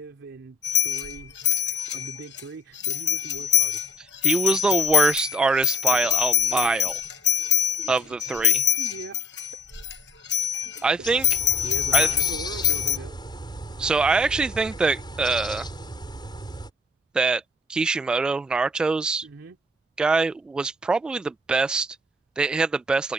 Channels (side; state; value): both; normal; correlation 0.52